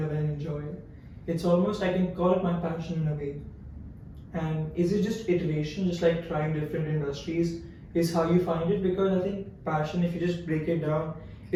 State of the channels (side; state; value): both; identical; correlation 1.00